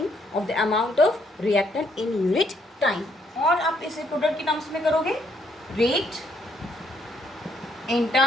of the amount of reactant in unit time. और आप इसे प्रोडक्ट के टर्म्स में करोगे, rate in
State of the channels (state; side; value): normal; both; correlation 0.71